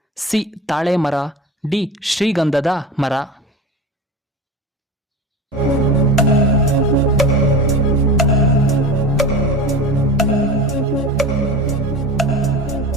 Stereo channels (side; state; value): both; normal; correlation 0.30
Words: ಸಿ ತಾಳೆ ಮರ, ಡಿ ಶ್ರೀಗಂಧದ ಮರ.